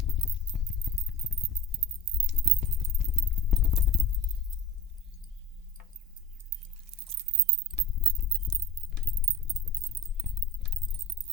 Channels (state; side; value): normal; both; correlation 0.34